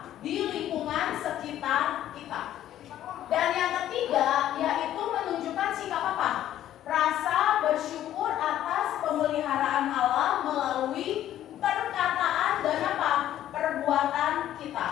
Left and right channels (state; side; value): quieter; right; 12.1 dB